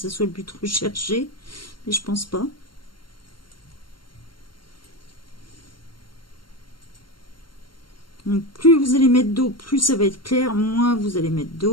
soit le but recherché, mais je pense pas. Donc, plus vous allez mettre d'eau, plus ça va être clair. Moins vous allez mettre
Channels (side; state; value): right; late; 0.72 ms